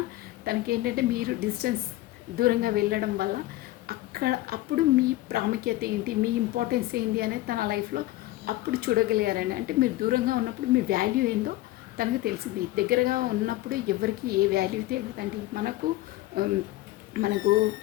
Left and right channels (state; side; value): quieter; right; 16.9 dB